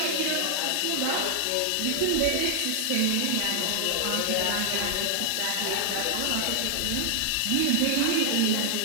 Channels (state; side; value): different; both; correlation 0.00